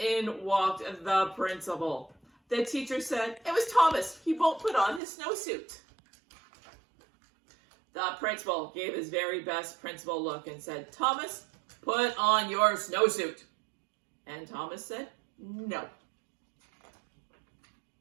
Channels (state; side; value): drops out; left; at 5.0 s